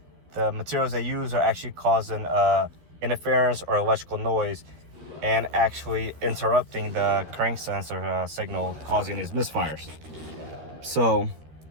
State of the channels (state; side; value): late; left; 13 ms